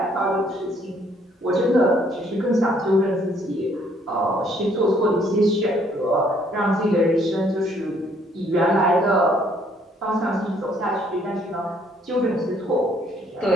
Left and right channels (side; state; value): both; normal; correlation 0.65